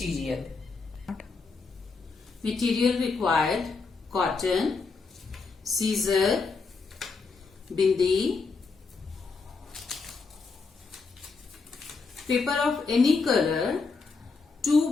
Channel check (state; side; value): quieter; right; 4.4 dB